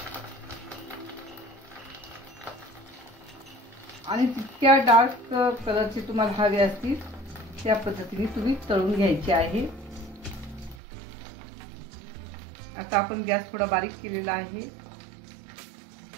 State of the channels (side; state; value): left; drops out; at 10.8 s